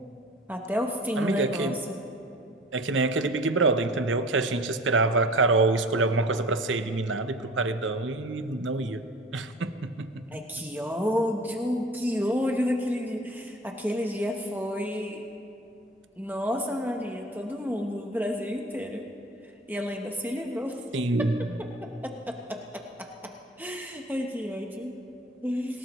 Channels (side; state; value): both; normal; correlation 0.43